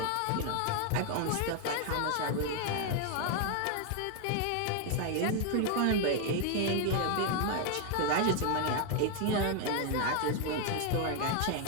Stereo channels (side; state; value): both; different; correlation 0.01